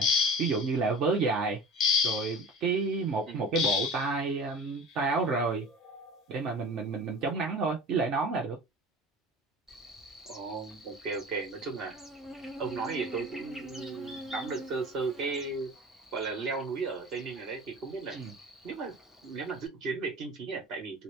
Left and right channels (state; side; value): normal; both; correlation 0.37